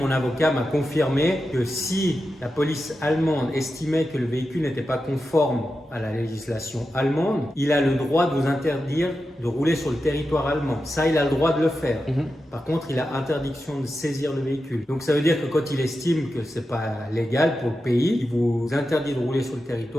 avocat m'a confirmé que si la police allemande estimait que le véhicule n'était pas conforme à la législation allemande, il a le droit de vous interdire de rouler sur le territoire allemand. Ça, il a le droit de le faire. Par contre, il a interdiction de saisir le véhicule. Donc ça veut dire que quand il estime que c'est pas légal pour le pays, il vous interdit de rouler sur le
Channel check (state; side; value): normal; both; correlation 0.90